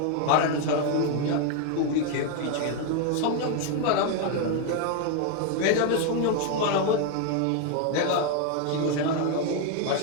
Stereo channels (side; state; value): both; different; correlation 0.01